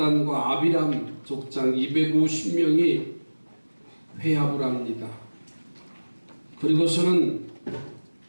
아비람 족장 250명이 회합을 합니다. 그리고서는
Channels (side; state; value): both; inverted; correlation -1.00